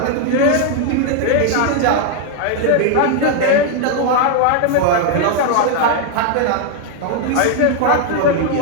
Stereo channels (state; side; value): different; both; correlation 0.00